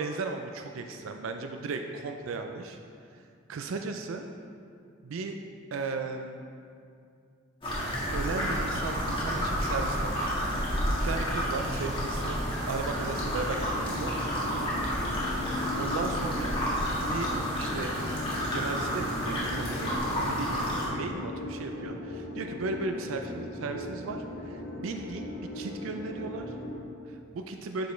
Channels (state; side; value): normal; both; correlation 0.30